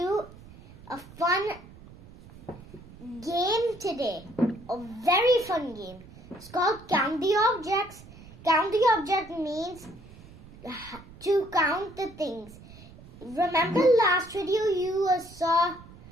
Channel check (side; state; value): right; noise; rumble, 20 dB below the sound